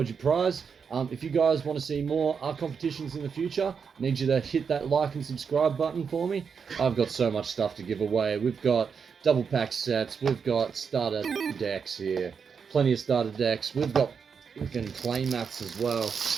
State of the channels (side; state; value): left; quieter; 6.2 dB